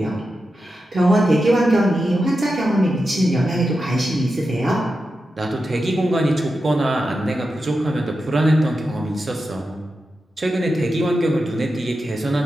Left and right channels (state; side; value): normal; both; correlation 0.90